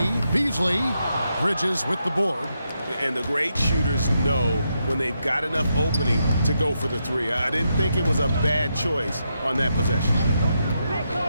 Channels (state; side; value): inverted; both; correlation -0.83